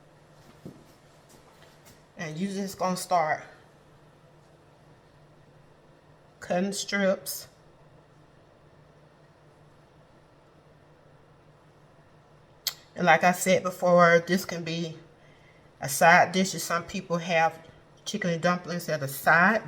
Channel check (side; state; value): both; identical; correlation 1.00